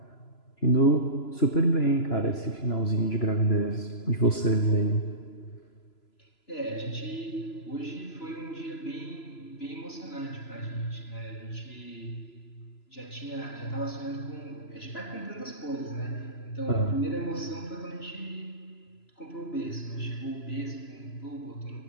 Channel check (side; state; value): right; late; 3.0 ms